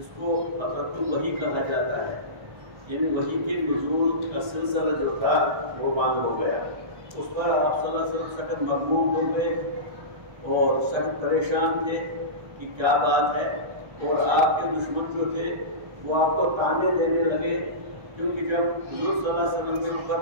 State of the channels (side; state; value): left; late; 1.3 ms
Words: کو فترۃ الوحی کہا جاتا ہے. یعنی وحی کے نزول کا سلسلہ جو تھا وہ بند ہو گیا. اس پر آپ صلی اللہ علیہ وسلم سخت مغموم ہو گئے اور سخت پریشان تھے کہ کیا بات ہے. اور آپ کے دشمن جو تھے وہ آپ کو تانے دینے لگے، کیونکہ جب حضور صلی اللہ علیہ وسلم کے